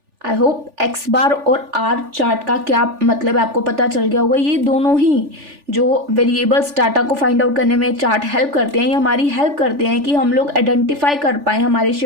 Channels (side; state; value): left; late; 3.4 ms